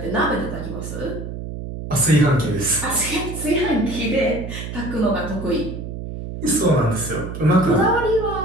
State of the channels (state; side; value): noise; right; hum, 8 dB below the sound